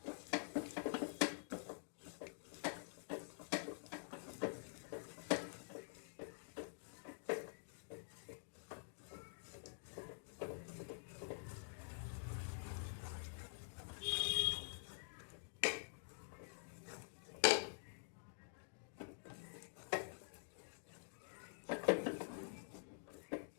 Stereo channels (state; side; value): silent; right; digital silence